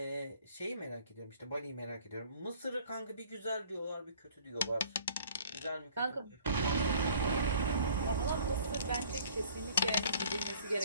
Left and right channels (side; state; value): both; inverted; correlation -0.53